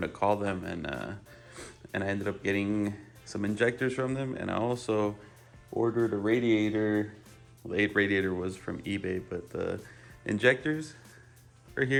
to call them, and I ended up getting some injectors from them, and I also ordered a radiator. The radiator was from eBay, but the injectors are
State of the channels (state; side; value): identical; both; correlation 1.00